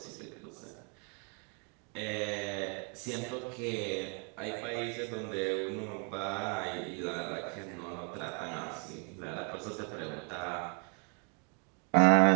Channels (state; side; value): quieter; left; 39.0 dB